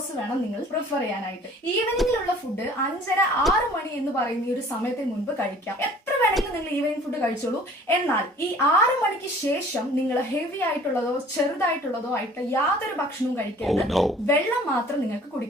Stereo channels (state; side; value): normal; both; correlation 0.50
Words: വേണം നിങ്ങൾ പ്രിഫർ ചെയ്യാനായിട്ട്. ഈവനിങ്ങിലുള്ള ഫുഡ് 5:30-6 മണി എന്ന് പറയുന്ന ഈ ഒരു സമയത്തിന് മുൻപ് കഴിക്കാം. എത്ര വേണമെങ്കിലും നിങ്ങൾ ഈവനിങ് ഫുഡ് കഴിച്ചോളൂ. എന്നാൽ ഈ 6 മണിക്ക് ശേഷം നിങ്ങൾ ഹെവി ആയിട്ടുള്ളതോ ചെറുതായിട്ടുള്ളതോ ആയിട്ട് യാതൊരു ഭക്ഷണവും കഴിക്കരുത്. വെള്ളം മാത്രം നിങ്ങൾക്ക്